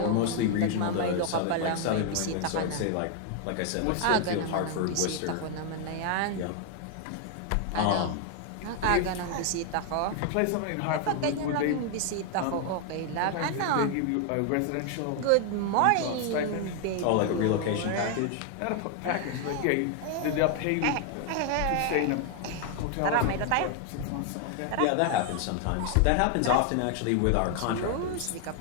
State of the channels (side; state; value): both; different; correlation 0.00